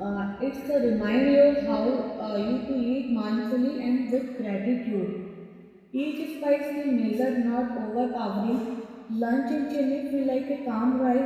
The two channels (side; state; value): both; identical; correlation 1.00